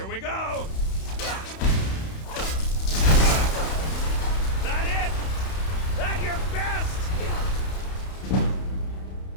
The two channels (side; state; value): right; late; 31 ms